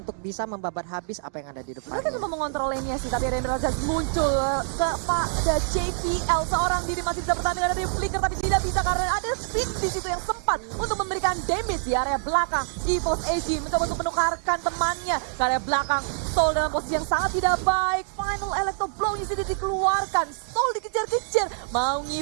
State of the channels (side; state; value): left; silent; digital silence